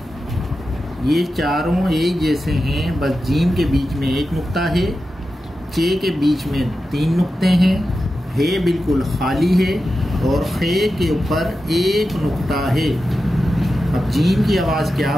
ये चारों एक जैसे हैं, बस जीम के बीच में एक नुक्ता है, चे के बीच में 3 नुक्ते हैं, हे बिल्कुल खाली है और खे के ऊपर एक नुक्ता है। अब जीम की आवाज़ क्या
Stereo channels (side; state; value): both; normal; correlation 0.91